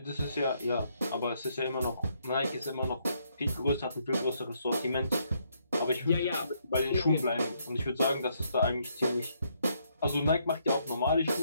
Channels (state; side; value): inverted; both; correlation -0.73